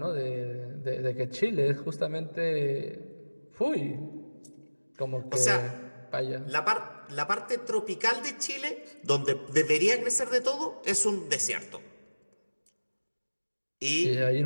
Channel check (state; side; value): inverted; both; correlation -1.00